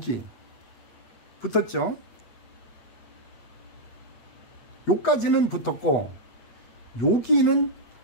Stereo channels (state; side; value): late; right; 8.3 ms